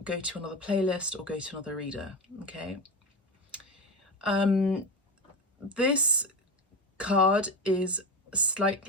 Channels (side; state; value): both; normal; correlation 0.21